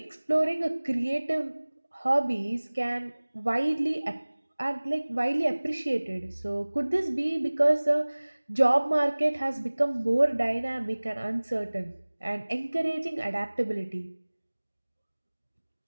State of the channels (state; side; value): inverted; both; correlation -1.00